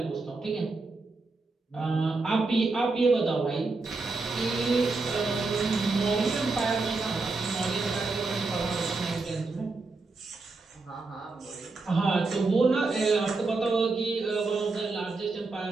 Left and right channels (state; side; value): quieter; left; 3.7 dB